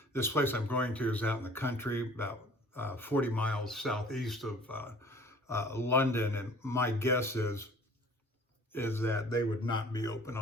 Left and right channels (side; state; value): both; normal; correlation 0.50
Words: this place I'm going to is out in the country, about 40 miles southeast of London, and my guess is that they would not be open